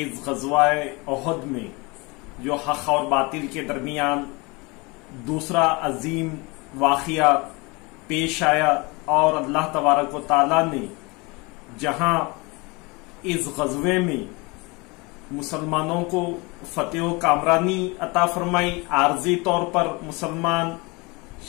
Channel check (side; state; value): right; quieter; 26.7 dB